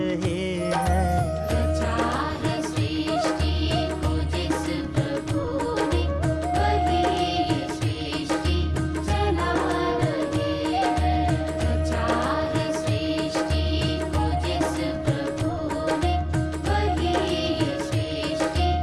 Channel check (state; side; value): identical; both; correlation 1.00